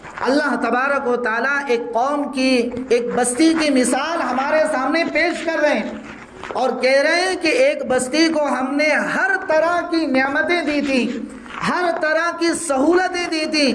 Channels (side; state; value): both; identical; correlation 1.00